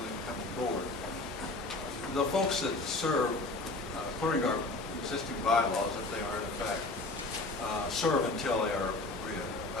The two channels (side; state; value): right; quieter; 3.2 dB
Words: incoming board. The folks that serve, according to our existing bylaws, if they are in effect, serve until they are